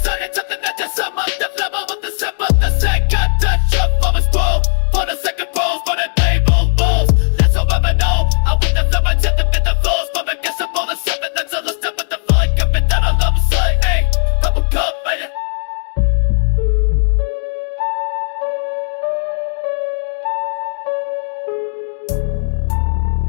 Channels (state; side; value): silent; right; digital silence